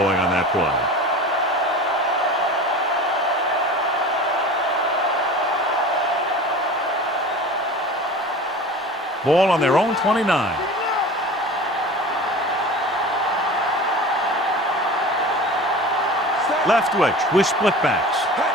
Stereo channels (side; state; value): both; normal; correlation 0.36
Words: on that play. Ball on their own 29. Leftwich with split backs.